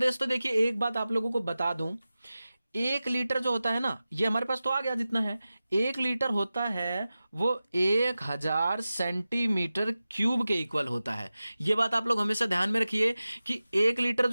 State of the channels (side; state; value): both; inverted; correlation -0.95